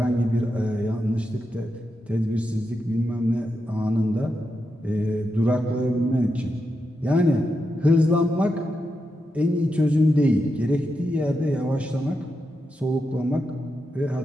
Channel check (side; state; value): both; normal; correlation 0.86